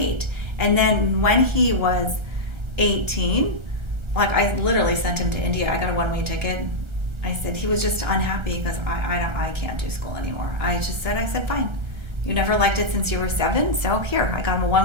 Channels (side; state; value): left; late; 1.3 ms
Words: And then when he was 18, I literally sent him to India. I got a one-way ticket. I said, he was just unhappy because I can't do school anymore. I said, fine. You never liked it since you were 7, so here, I got him a